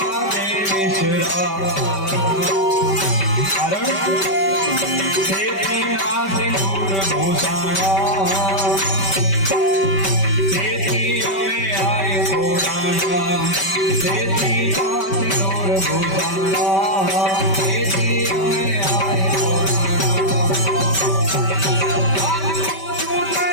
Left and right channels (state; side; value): late; right; 5.2 ms